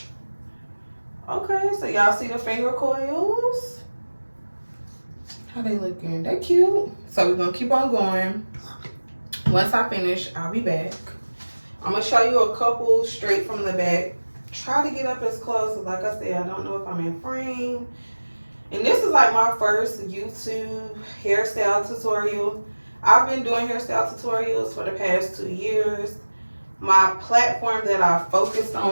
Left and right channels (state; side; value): inverted; both; correlation -1.00